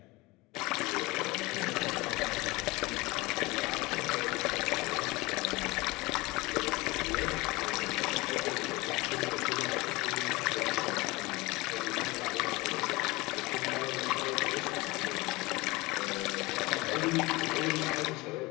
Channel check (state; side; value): quieter; right; 22.5 dB